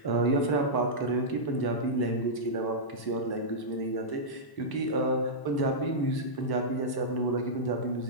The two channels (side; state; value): right; late; 1.0 ms